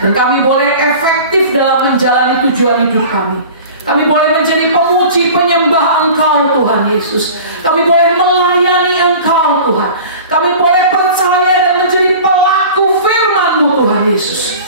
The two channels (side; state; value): both; inverted; correlation -0.40